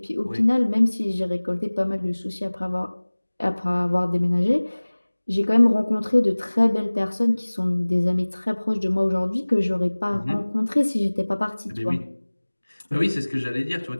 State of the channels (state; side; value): inverted; both; correlation -1.00